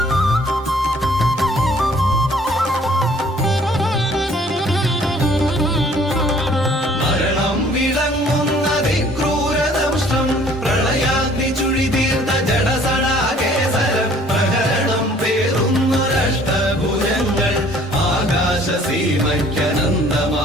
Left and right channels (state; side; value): normal; both; correlation 0.56